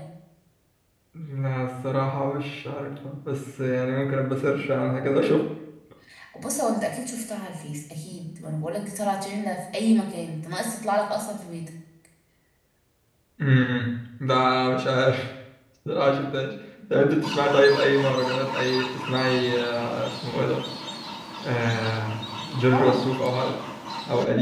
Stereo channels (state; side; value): identical; both; correlation 1.00